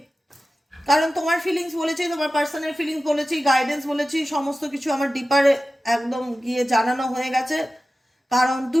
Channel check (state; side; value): normal; both; correlation 0.95